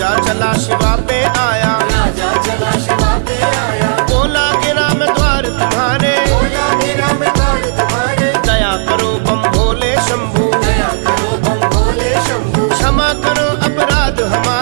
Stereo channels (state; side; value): silent; left; 64 dB below the other